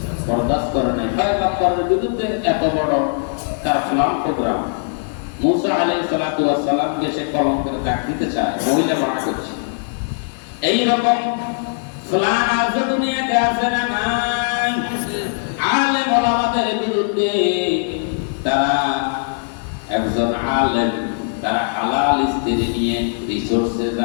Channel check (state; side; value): silent; right; digital silence